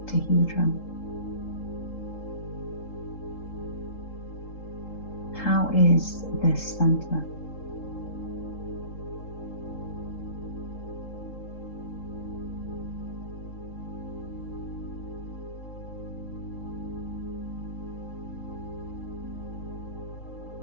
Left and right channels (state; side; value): late; right; 3.8 ms